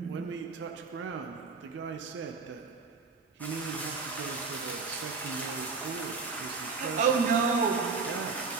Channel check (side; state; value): left; quieter; 4.6 dB